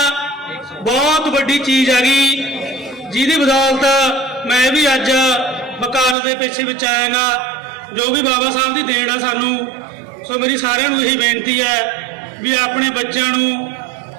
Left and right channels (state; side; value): drops out; left; at 6.2 s